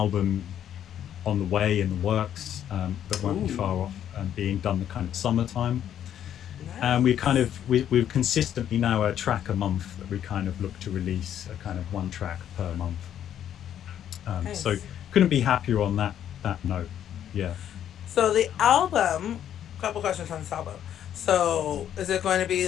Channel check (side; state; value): right; quieter; 10.2 dB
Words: on the way in the works that won't be far Ooh. off being done the kind of summertime. And Nice. we're consistently now a track a month that we kind of look to release, a kind of one track per month. So Nice. couldn't be happier on that note. Yeah. So the album, couple questions on this album. So is it going to